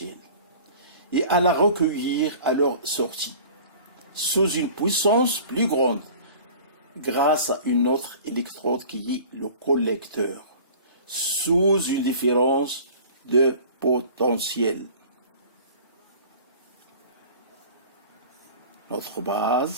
et à la recueillir à leur sortie, sous une puissance plus grande, grâce à une autre électrode qui est le collecteur, sous une différence de potentiel. Notre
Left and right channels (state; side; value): inverted; both; correlation -0.44